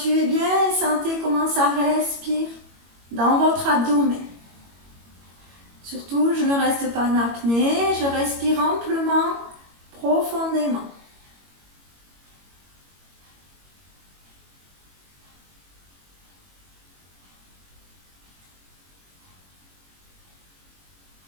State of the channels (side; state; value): left; late; 21 ms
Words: bien et sentez comment ça respire dans votre abdomen. Surtout, je ne reste pas en apnée, je respire amplement, profondément.